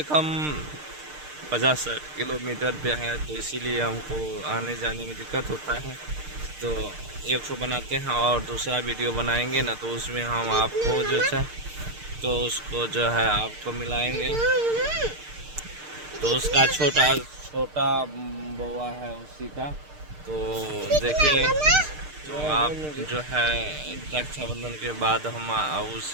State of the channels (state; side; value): late; left; 6.6 ms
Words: कम 50-60 किलोमीटर पे है, तो इसीलिए हमको आने जाने में दिक्कत होता है। तो एक ठो बनाते हैं और दूसरा वीडियो बनाएंगे ना, तो उसमें हम आपको जो है तो उसको जो है आपको मिलाएंगे। तो उसका छोटा बउआ है उसी का, तो देखिए तो आप जो है रक्षाबंधन के बाद हम